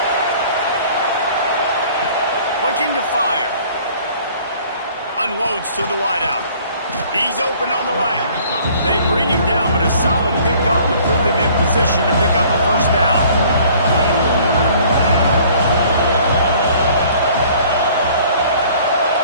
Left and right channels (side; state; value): both; inverted; correlation -0.54